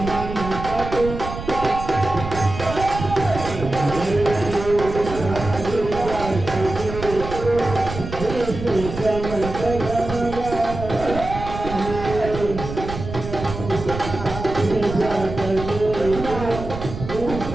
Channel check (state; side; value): noise; right; rumble, 8 dB below the sound